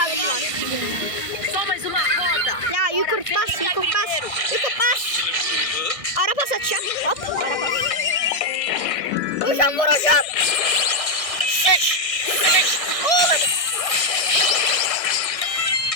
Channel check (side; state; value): right; late; 1.6 ms